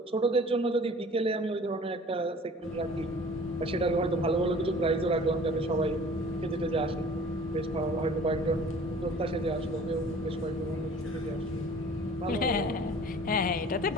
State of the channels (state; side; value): normal; both; correlation 0.47